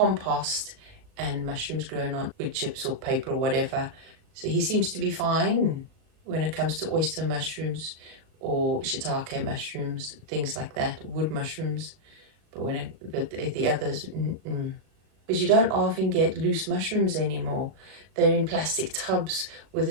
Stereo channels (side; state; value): left; late; 38 ms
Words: and mushrooms grown on wood chips or paper or whatever. So he seems to be fine when it comes to oyster mushrooms or shiitake mushrooms, things like that, wood mushrooms. But when the others, But you don't often get loose mushrooms anymore. They're in plastic tubs with a